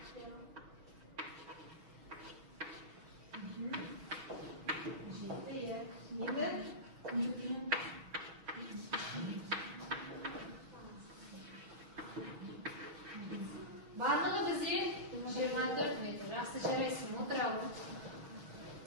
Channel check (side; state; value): left; late; 6.5 ms